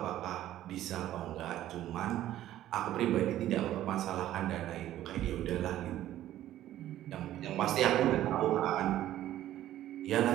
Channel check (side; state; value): left; quieter; 13.2 dB